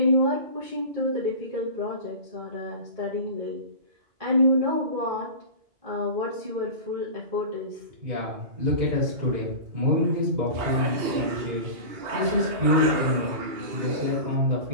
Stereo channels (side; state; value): left; late; 2.8 ms